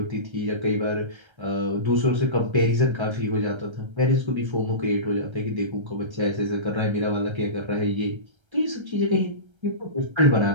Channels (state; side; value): late; left; 1.3 ms